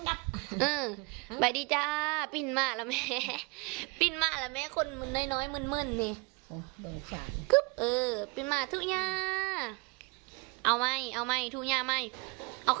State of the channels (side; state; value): left; quieter; 29.0 dB